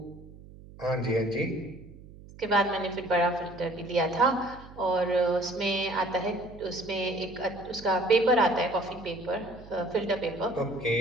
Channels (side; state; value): right; noise; hum, 19 dB below the sound